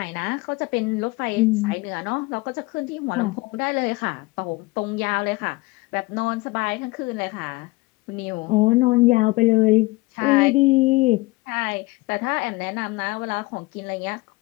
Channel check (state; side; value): quieter; right; 22.8 dB